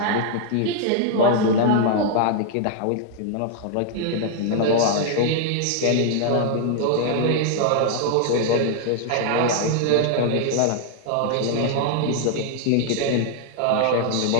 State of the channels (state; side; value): different; both; correlation 0.00